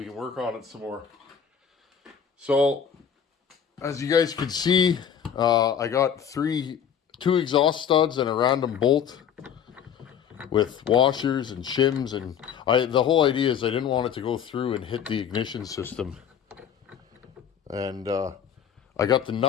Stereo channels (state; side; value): quieter; right; 8.1 dB